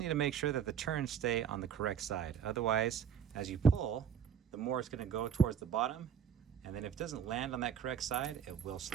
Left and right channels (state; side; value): quieter; left; 7.8 dB